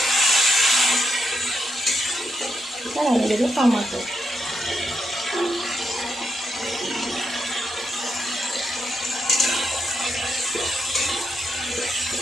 আর আমি দেবো টমেটো,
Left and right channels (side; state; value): both; normal; correlation 0.82